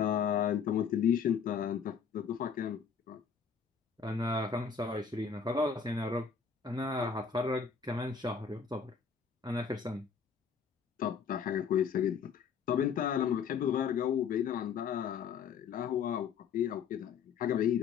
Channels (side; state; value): right; quieter; 6.5 dB